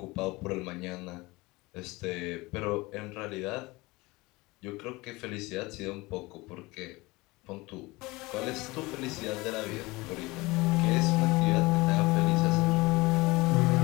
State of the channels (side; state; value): right; quieter; 22.5 dB